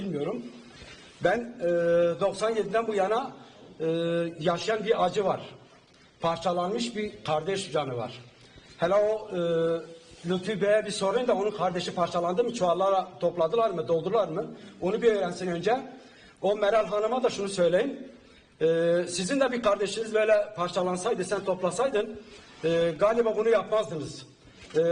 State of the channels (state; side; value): identical; both; correlation 1.00